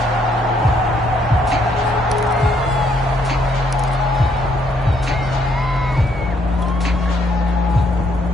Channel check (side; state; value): both; normal; correlation 0.70